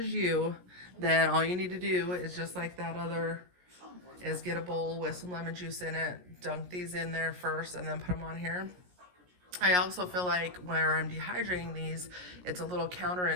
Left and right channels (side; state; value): left; late; 17 ms